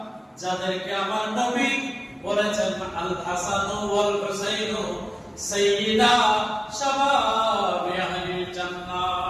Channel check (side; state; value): both; identical; correlation 1.00